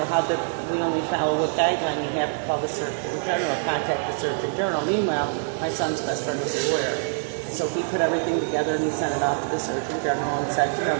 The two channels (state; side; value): silent; left; digital silence